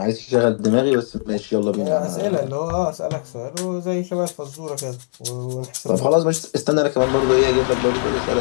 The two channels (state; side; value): silent; right; digital silence